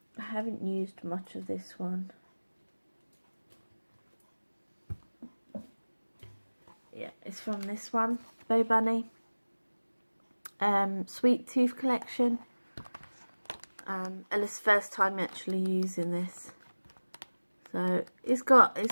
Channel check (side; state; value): both; inverted; correlation -1.00